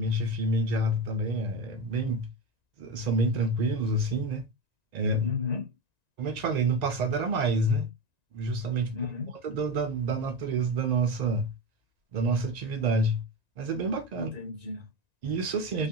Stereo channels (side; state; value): left; late; 1.9 ms